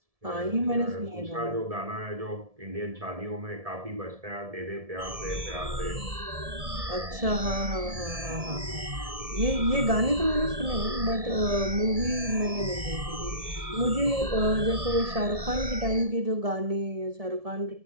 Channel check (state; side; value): late; left; 1.7 ms